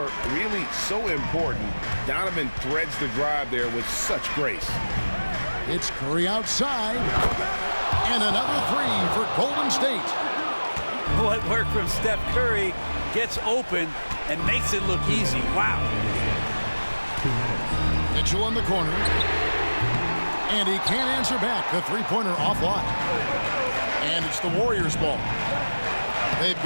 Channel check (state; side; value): inverted; both; correlation -1.00